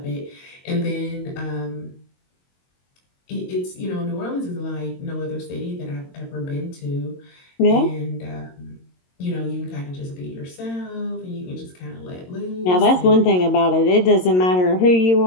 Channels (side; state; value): right; late; 22 ms